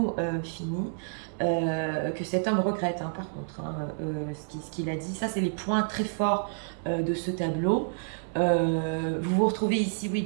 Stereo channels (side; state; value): left; silent; 59 dB below the other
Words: finies, que cet homme regrette, hein, par contre, hein, ce qu'il a dit. Ça, c'est les points très forts de ce tableau. Vous vous retrouvez ici, oui,